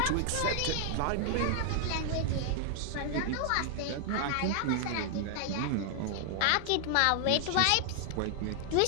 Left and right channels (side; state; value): both; different; correlation 0.00